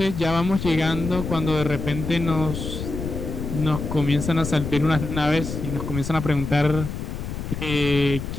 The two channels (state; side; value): noise; left; rumble, 6 dB below the sound